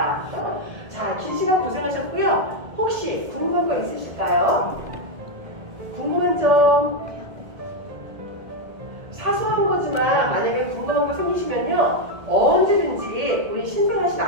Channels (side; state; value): left; late; 1.7 ms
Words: 자, 긴 시간 고생하셨고요. 혹시 궁금한 거 있으실까요? 궁금한 점, 사소한 거지만 만약에 궁금한 거 생기시면요 언제든지 우리 신생아실